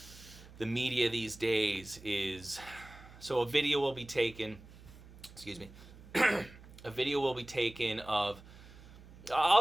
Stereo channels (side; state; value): right; noise; hum, 19 dB below the sound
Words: the media these days is, so a video will be taken. Excuse me. A video will be taken of.